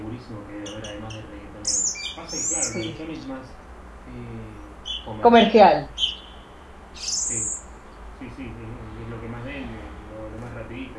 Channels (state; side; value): identical; both; correlation 1.00